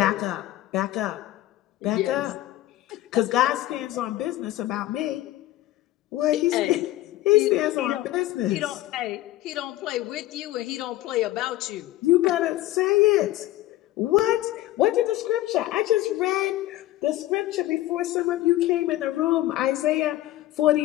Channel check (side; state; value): right; quieter; 15.7 dB